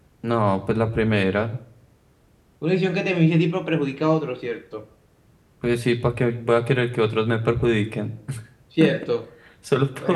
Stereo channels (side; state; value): both; identical; correlation 1.00